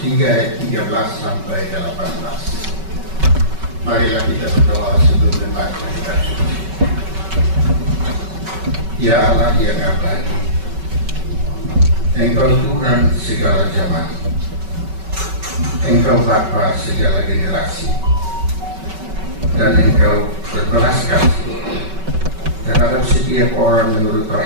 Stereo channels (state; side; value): late; left; 5.3 ms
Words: ayat 13 sampai 18. Marilah kita berdoa sebelum membaca kitab suci. Ya Allah yang abadi, Engkau Tuhan segala zaman, Engkau Bapa segala generasi, dan Engkau berbelas kasih terhadap setiap orang menurut